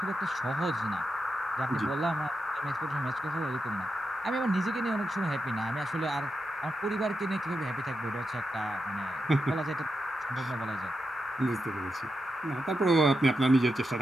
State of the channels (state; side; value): normal; both; correlation 0.87